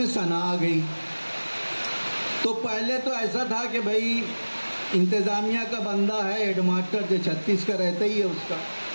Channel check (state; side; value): inverted; both; correlation -1.00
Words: सना आ गई। तो पहले तो ऐसा था कि भाई इंतज़ामिया का बंदा है, हेडमास्टर जो 36 का रहता ही है उसका।